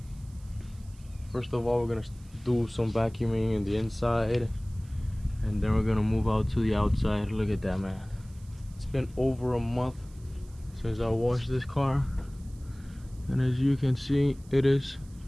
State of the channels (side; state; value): right; noise; hiss, 27 dB below the sound